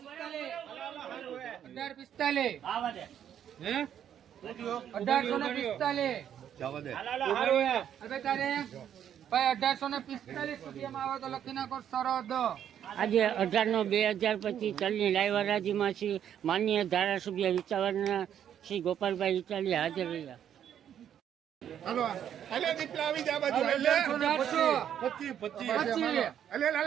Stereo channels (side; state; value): left; quieter; 9.6 dB